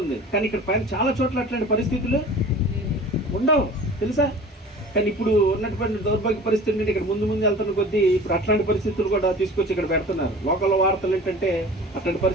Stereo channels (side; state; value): both; normal; correlation 0.41